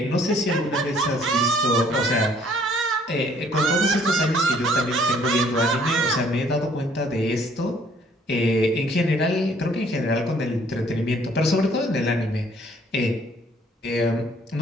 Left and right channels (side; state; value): both; normal; correlation 0.61